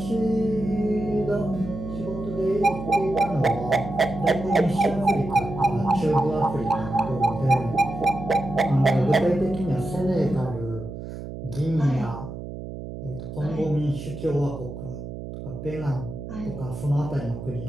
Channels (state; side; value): noise; right; hum, 9 dB below the sound